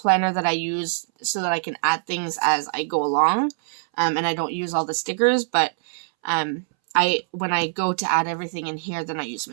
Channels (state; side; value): silent; left; 63 dB below the other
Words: that I use so that I can add things as I go along, and I don't use all the stickers, but when I go to add everything in here, then I use